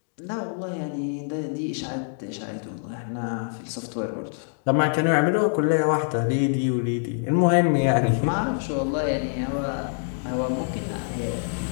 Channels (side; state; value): right; silent; digital silence